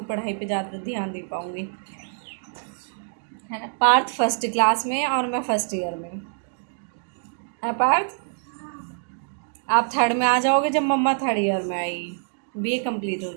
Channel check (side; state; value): left; silent; digital silence